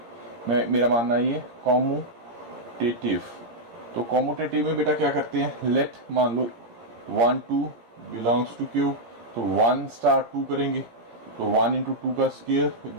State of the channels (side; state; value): left; late; 17 ms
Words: मेरा मानना ये कॉम्यूटेटिव। तो कॉम्यूटेटिव में बेटा क्या करते हैं, लेट मान लो 1 2 बिलोंग्स टू Q, तो 1 स्टार 2 करेंगे, तो 1 इंटू 2 का square